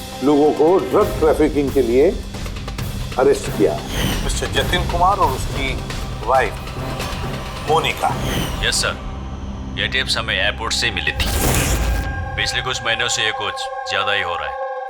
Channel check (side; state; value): both; identical; correlation 1.00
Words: लोगों को ड्रग ट्रैफिकिंग के लिए अरेस्ट किया, मिस्टर जतिन कुमार और उसकी वाइफ मोनिका। यस सर, ये टिप्स हमें एयरपोर्ट से मिली थी। पिछले कुछ महीनों से ये कुछ ज्यादा ही हो रहा